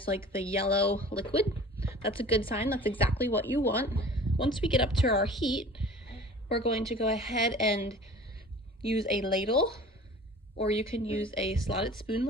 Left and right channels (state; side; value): normal; both; correlation 0.44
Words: like the yellow liquid. That's a good sign. That's exactly what you want. Once we get up to our heat, we're going to go ahead and use a ladle, or you can use a slotted spoon